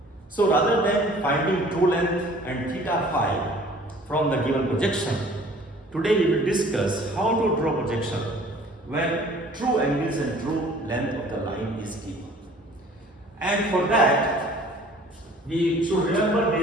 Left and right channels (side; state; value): both; normal; correlation 0.51